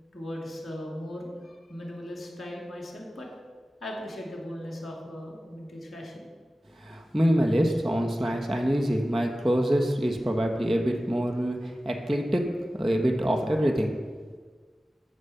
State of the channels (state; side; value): normal; both; correlation 0.95